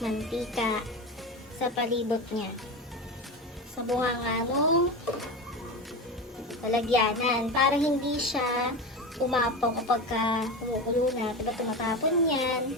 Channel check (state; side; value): normal; both; correlation 0.23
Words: mantika sa palibot niya. Sa bunganga nung lalagyanan para hindi siya umapaw kapag kumukulo na. Diba tumatapon yan?